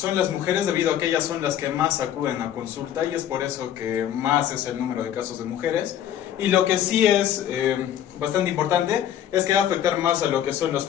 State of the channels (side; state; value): right; quieter; 10.6 dB